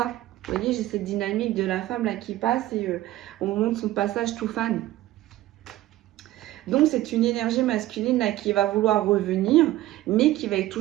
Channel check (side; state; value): left; quieter; 15.5 dB